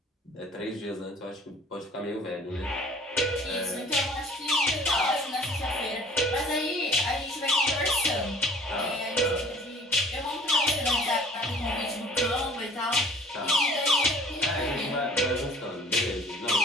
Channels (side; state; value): both; normal; correlation 0.51